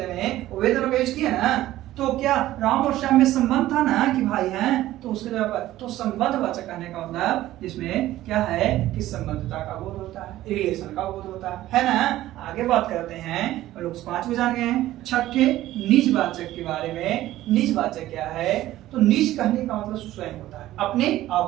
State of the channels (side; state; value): left; quieter; 14.9 dB